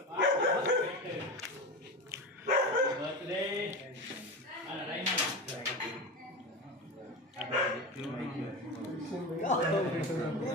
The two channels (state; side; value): normal; both; correlation 0.24